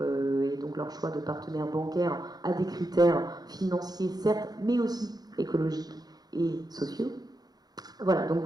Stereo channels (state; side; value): late; left; 0.19 ms